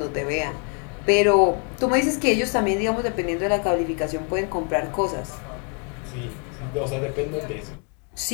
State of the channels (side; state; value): right; quieter; 37.6 dB